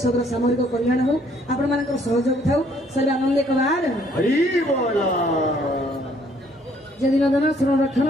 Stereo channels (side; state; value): both; normal; correlation 0.64